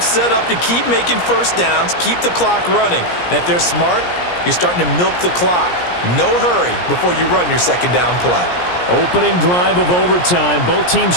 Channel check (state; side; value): late; right; 17 ms